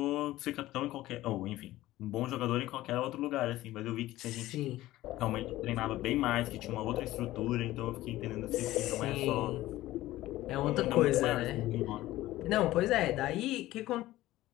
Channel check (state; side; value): quieter; right; 16.1 dB